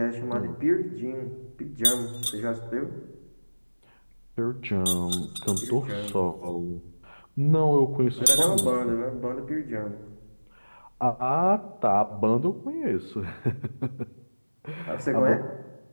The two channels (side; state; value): both; inverted; correlation -1.00